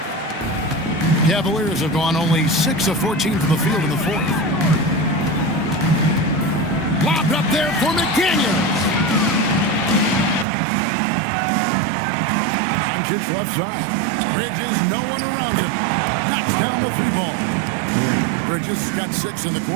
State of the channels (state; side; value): drops out; left; at 10.5 s